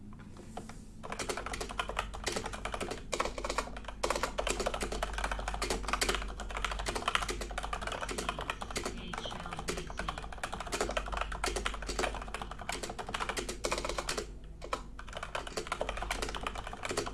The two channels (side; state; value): both; identical; correlation 1.00